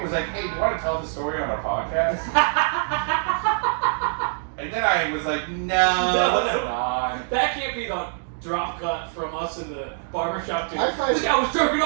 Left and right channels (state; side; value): silent; left; digital silence